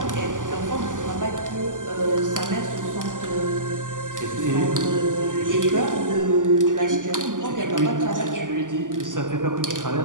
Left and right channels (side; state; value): left; late; 0.88 ms